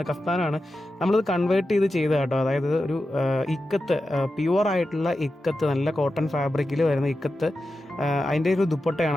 നമ്മളിത് കൺവേർട്ട് ചെയ്ത് കേട്ടോ. അതായത് ഒരു ഇക്കത്ത്, പ്യുവർ ആയിട്ടുള്ള ഇക്കത്ത്, നല്ല കോട്ടൺ ഫാബ്രിക്കിൽ വരുന്ന ഇക്കത്ത്, അതിൻ്റെ ഒരു ദുപ്പട്ടയാണ്.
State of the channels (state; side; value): normal; both; correlation 0.91